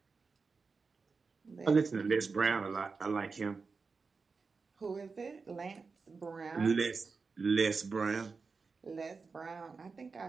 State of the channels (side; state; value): left; quieter; 4.6 dB